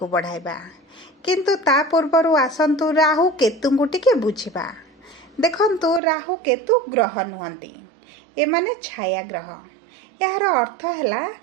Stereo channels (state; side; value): drops out; left; at 6.0 s